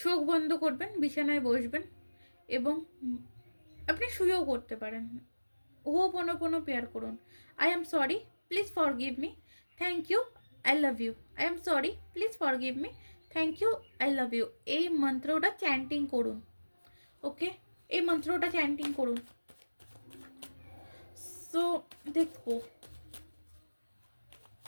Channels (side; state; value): both; inverted; correlation -1.00